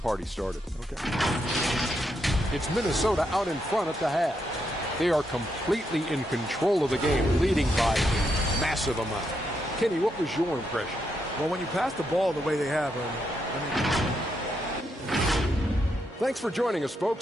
started. Okay. It's Minnesota out in front at the half. They are completely in control of the game, leading by a massive amount. Kenny, what was your impression? Well, when you pass the ball the way they have, Thanks for joining us,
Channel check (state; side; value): normal; both; correlation 0.80